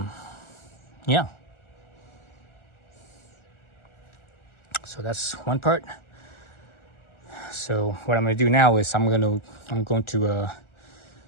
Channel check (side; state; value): right; late; 1.4 ms